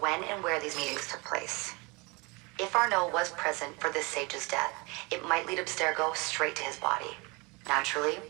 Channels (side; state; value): left; quieter; 27.5 dB